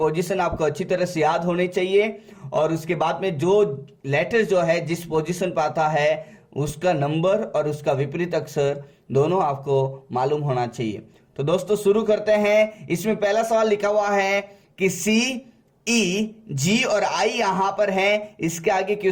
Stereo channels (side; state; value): both; identical; correlation 1.00